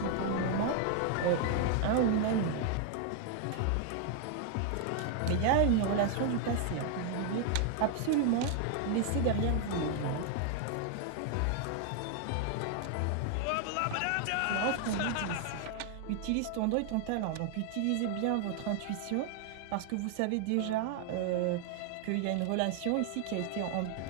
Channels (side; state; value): both; different; correlation 0.00